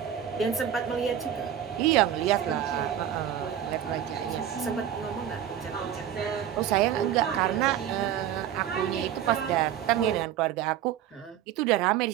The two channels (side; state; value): left; quieter; 10.3 dB